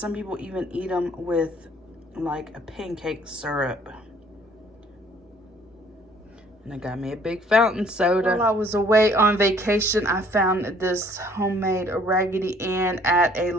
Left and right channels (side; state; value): both; normal; correlation 0.58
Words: people even eat them with like a pancake syrup. And I got me a big fountain soda. While I was away on vacation, I found this homemade Raggedy Ann at a